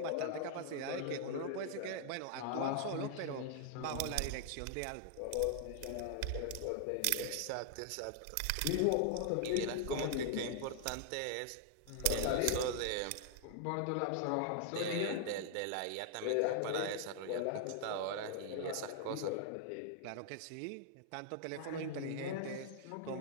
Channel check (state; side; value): different; both; correlation -0.01